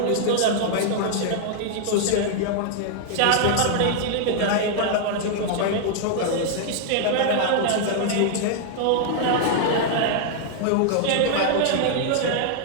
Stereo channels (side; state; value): both; different; correlation 0.00